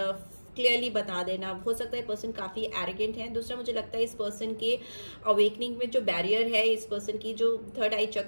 क्लियरली बता देना। हो सकता है पर्सन काफ़ी एरोगेंट है। दूसरा मुझे लगता है इस पर्सन के अवेकनिंग में जो बैरियर है, इस पर्सन की जो 3rd आई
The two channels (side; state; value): both; inverted; correlation -1.00